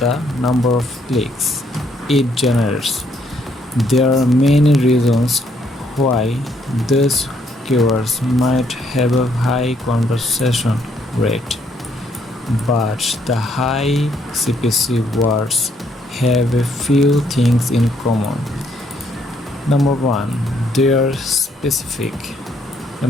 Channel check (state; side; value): normal; both; correlation 0.70